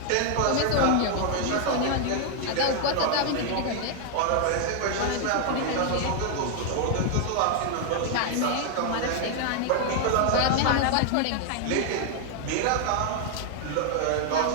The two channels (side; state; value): both; different; correlation 0.00